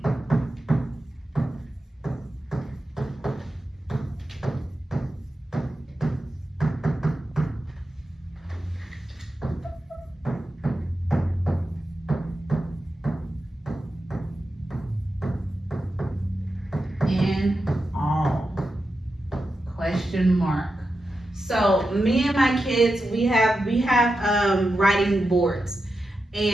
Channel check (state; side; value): normal; both; correlation 0.90